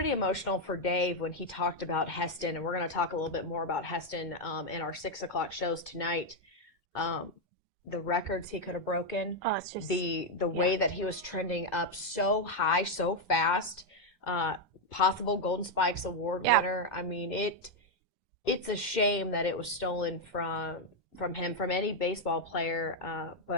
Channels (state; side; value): normal; both; correlation 0.02